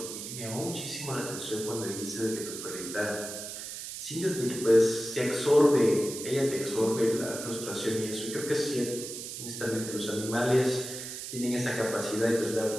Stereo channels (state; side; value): noise; right; hiss, 8 dB below the sound